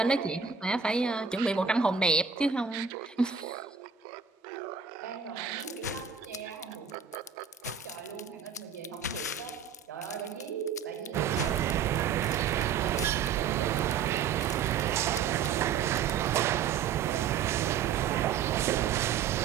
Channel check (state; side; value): quieter; left; 6.9 dB